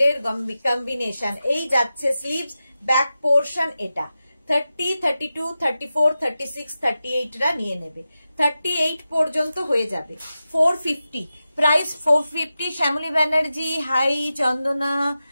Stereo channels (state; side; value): inverted; both; correlation -0.92